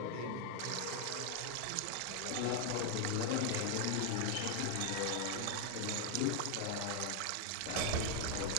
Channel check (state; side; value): different; both; correlation 0.00